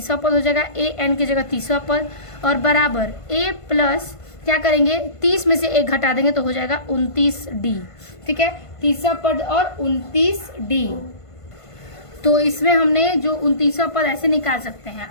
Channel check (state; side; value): late; right; 1.5 ms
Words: पद हो जाएगा, ए एन की जगह तीसरा पद, और बराबर ए प्लस क्या करेंगे, 30 में से 1 घटा देंगे तो हो जाएगा 29 डी। ठीक है, तीसरा पद और 29 डी। तो इसमें हमने जो 29वां पद ऐसे निकाल सकते हैं।